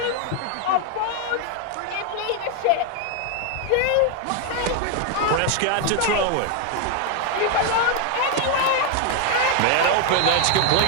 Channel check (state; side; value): different; both; correlation 0.01